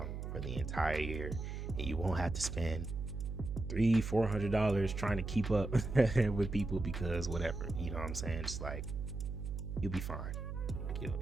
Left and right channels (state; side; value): noise; right; hum, 5 dB below the sound